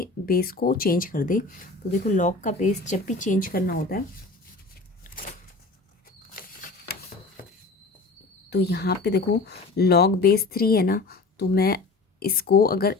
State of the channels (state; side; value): quieter; right; 3.6 dB